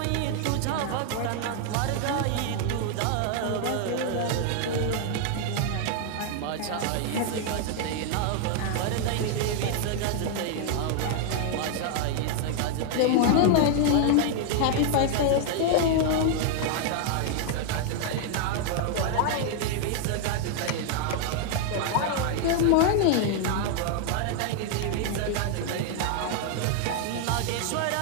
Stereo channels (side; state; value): both; different; correlation 0.00